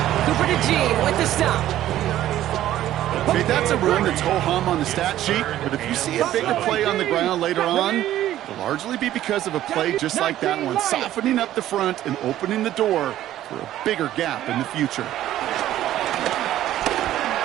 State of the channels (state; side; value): quieter; left; 13.1 dB